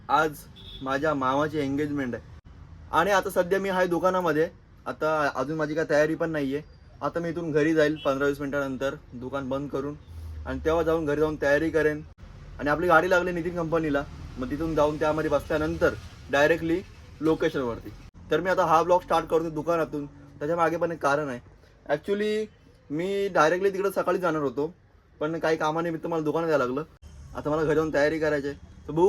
आज माझ्या मामाची एंगेजमेंट आहे आणि आता सध्या मी आहे दुकानामध्ये. आता अजून माझी काय तयारी पण नाही आहे. आता मी इथून घरी जाईल 15-20 मिनिटानंतर दुकान बंद करून, आणि तेव्हा जाऊन घरी जाऊन तयारी करेन. आणि आपली गाडी लागली नितीन कंपनीला, मग तिथून जाऊन त्यामध्ये बसल्यानंतर डायरेक्टली लोकेशनवरती. तर मी आता हा ब्लॉग स्टार्ट करतो दुकानातून. त्याच्या मागे पण एक कारण आहे. ॲक्च्युली मी डायरेक्टली तिकडे सकाळी जाणार होतो, पण काही कामानिमित्त मला दुकानात यायला लागलं. आता मला घरी जाऊन तयारी करायची आहे, तर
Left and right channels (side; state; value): both; identical; correlation 1.00